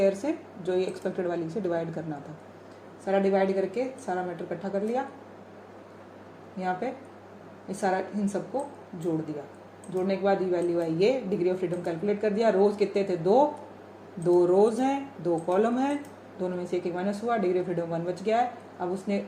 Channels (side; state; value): both; identical; correlation 1.00